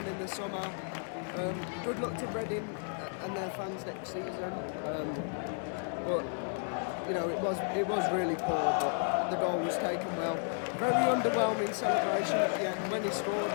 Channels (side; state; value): right; silent; 56 dB below the other